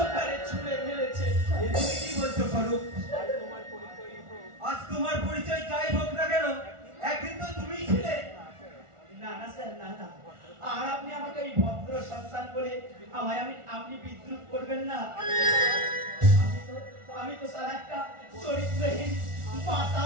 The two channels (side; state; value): left; late; 1.4 ms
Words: তুমি কি বলছো স্বরূপ? আজ তোমার পরিচয় যাই হোক না কেন, একদিন তো তুমিই ছিলে। না না স্যার, না না, আর আপনি আমাকে এই ভদ্র সন্তান বলে আপনি বিদ্রুপ করবেন না। আমি তো স্যার একটা চরিত্রহীন